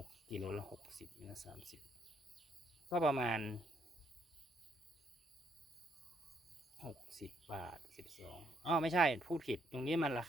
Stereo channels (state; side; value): normal; both; correlation 0.73